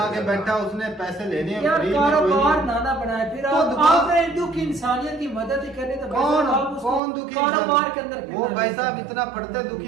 के बैठा, उसने पैसे लेने हैं यार फ्री में, कोई कारोबार नहीं। नाना बनाए फिर तो आप दुकान- आपने दुख इंसानियत की मदद ही करनी तो भाई कौन साहब आप उसको कौन दुखी कारोबार के अंदर इंसान? वो करना भाई है। साहब इतना पढ़ते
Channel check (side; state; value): left; drops out; at 7.0 s